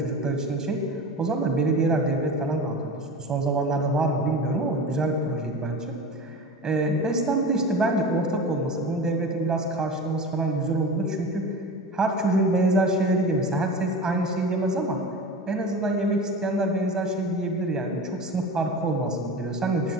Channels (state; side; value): normal; both; correlation 0.31